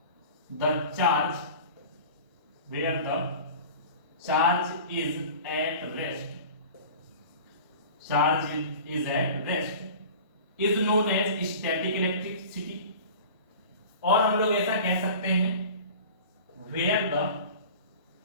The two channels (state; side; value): inverted; both; correlation -0.39